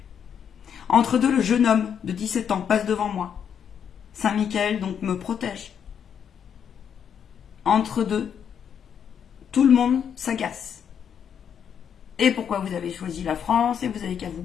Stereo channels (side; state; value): right; quieter; 8.0 dB